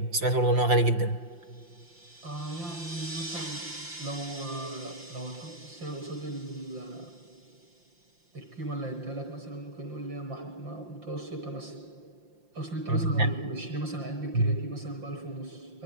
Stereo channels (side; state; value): left; late; 5.7 ms